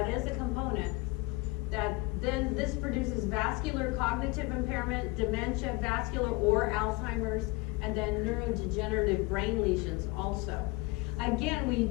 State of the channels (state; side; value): quieter; right; 22.4 dB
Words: is a component, that then this produces vascular cognitive impairment, dementia, vascular or Alzheimer's, and then neurodegenerative brain lesions also. Again,